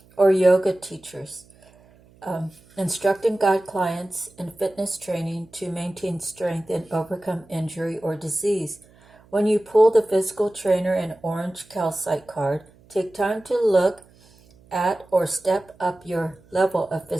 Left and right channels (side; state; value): right; noise; hum, 28 dB below the sound